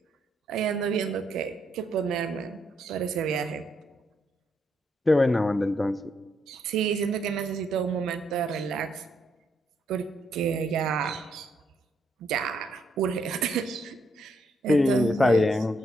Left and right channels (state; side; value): normal; both; correlation 0.76